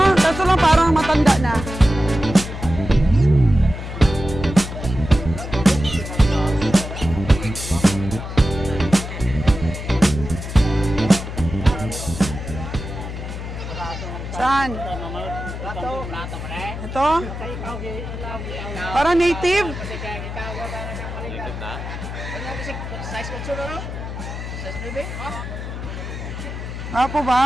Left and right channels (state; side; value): noise; left; hum, 7 dB below the sound